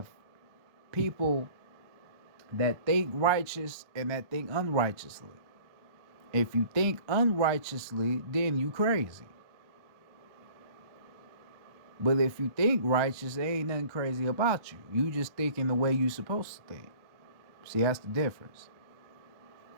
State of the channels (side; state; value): left; late; 1.2 ms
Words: people that think righteous and that think unrighteously. If you think unrighteously, then you crazy. But if you think righteous, there ain't nothing crazy about you. You just thinking the way you supposed to think. See, that's the difference.